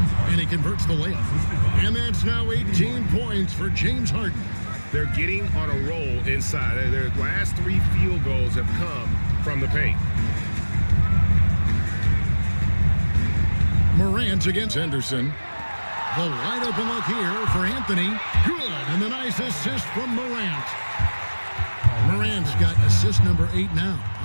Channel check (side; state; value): both; inverted; correlation -1.00